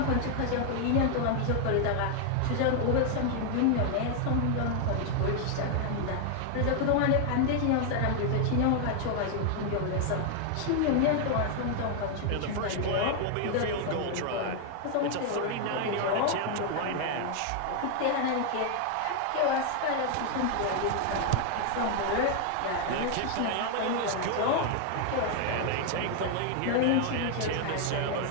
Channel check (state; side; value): different; both; correlation 0.00